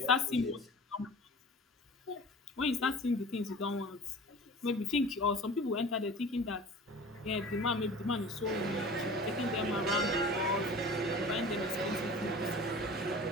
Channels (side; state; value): both; normal; correlation 0.40